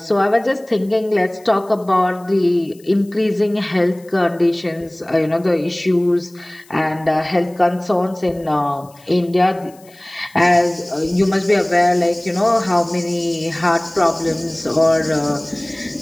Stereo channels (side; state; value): left; noise; hiss, 27 dB below the sound